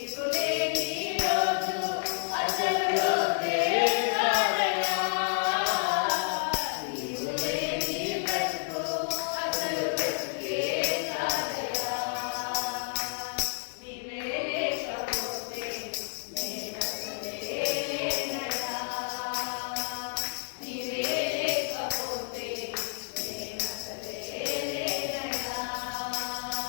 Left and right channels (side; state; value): right; silent; 58 dB below the other